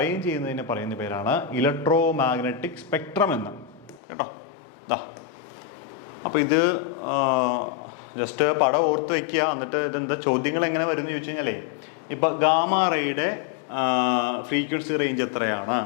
ചെയ്യുന്നതിനെ പറയുന്ന പേരാണ് electromagnetic spectrum എന്ന്. കേട്ടോ, അപ്പോൾ ഇത് just പടം ഓർത്ത് വയ്ക്കുക. എന്നിട്ട് ഇതെന്താ ചോദ്യങ്ങൾ എങ്ങനെ വരും എന്ന് ചോദിച്ചു കഴിഞ്ഞാലേ, ഇപ്പം ഗാമാ റേയുടെ ഫ്രീക്വൻസി റേഞ്ച് എത്രയാണ്,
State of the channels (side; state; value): right; drops out; at 4.0 s